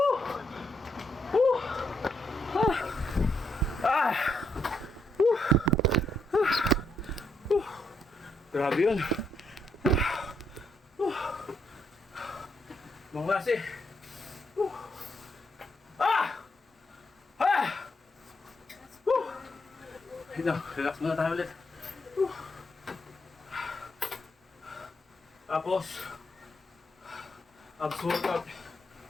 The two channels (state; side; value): normal; both; correlation 0.77